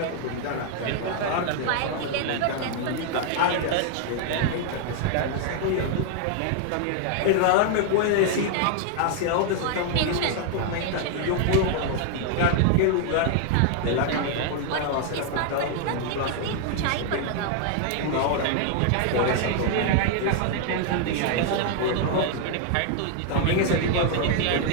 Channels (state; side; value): different; both; correlation 0.00